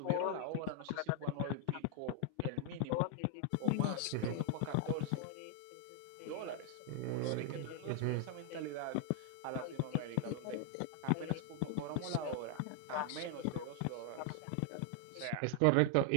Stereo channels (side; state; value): both; different; correlation 0.00